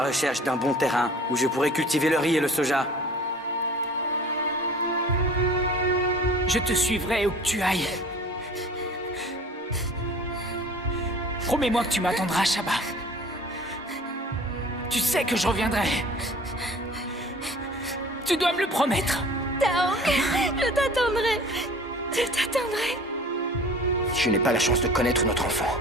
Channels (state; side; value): normal; both; correlation 0.45